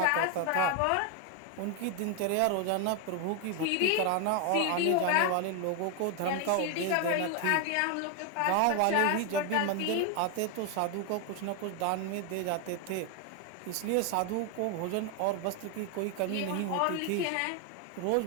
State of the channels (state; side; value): different; both; correlation 0.01